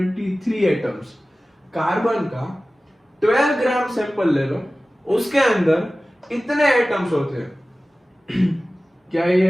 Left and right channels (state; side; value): normal; both; correlation 0.97